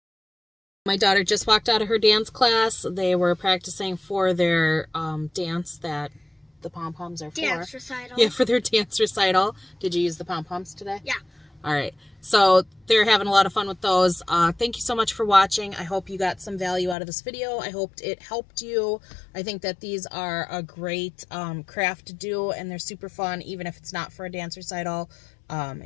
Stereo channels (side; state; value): right; drops out; at 16.9 s